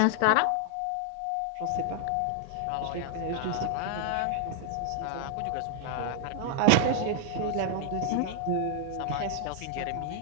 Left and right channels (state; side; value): different; both; correlation 0.00